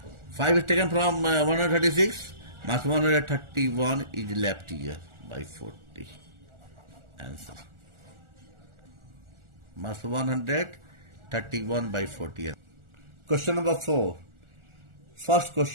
5 is taken from 136, minus 131 is left here by 40. Answer. Minus 131 by 40. Question number 4. First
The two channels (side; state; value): left; late; 1.4 ms